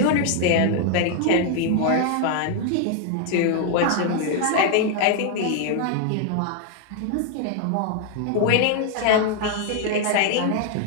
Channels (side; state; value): both; different; correlation 0.00